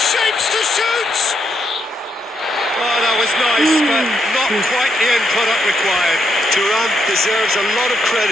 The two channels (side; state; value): both; normal; correlation 0.79